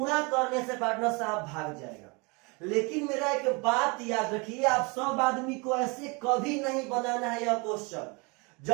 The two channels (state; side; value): quieter; left; 29.5 dB